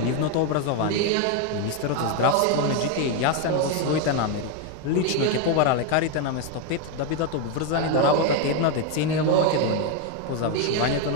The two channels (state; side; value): different; both; correlation 0.02